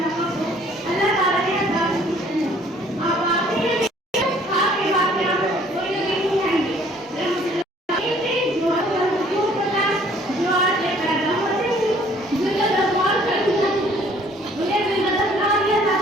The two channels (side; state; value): both; normal; correlation 0.58